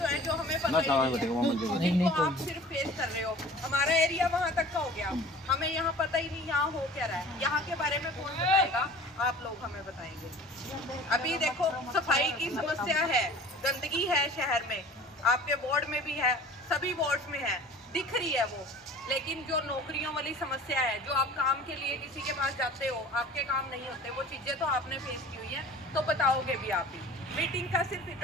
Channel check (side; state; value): both; normal; correlation 0.44